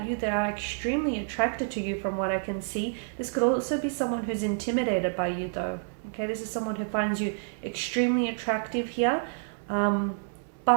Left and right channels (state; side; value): silent; left; 59 dB below the other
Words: you. They are extremely attracted to you from what I can see. This could also be someone who's intimidated by you though. Okay, this is someone who finds you extremely attractive here,